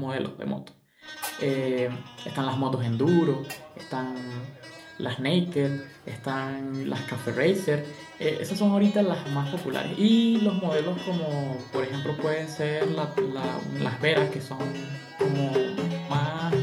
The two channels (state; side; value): identical; both; correlation 1.00